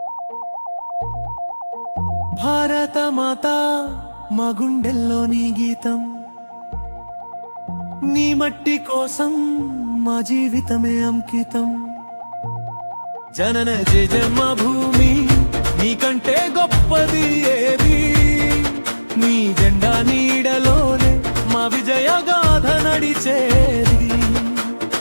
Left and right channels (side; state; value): both; inverted; correlation -1.00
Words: భారత మాత మా గుండెల్లో నీ గీతం, నీ మట్టి కోసం మా జీవితమే అంకితం. జనన జన్మ భూమి నీకంటే గొప్పది ఏది, నీ జెండా నీడలోనే మా విజయ గాథ నడిచేది.